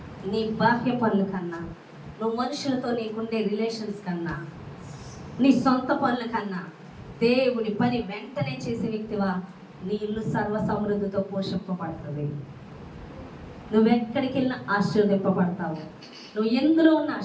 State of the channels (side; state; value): both; identical; correlation 1.00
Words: నీ బాహ్య పనుల కన్నా, నువ్వు మనుషులతో నీకుండే రిలేషన్స్ కన్నా, నీ సొంత పనుల కన్నా దేవుని పని వెంటనే చేసే వ్యక్తివా, నీ ఇల్లు సర్వ సమృద్ధితో పోషింపబడుతుంది. నువ్వెక్కడికి వెళ్ళినా ఆశీర్వదింపబడతావు. నువ్వు ఎందులో ఉన్న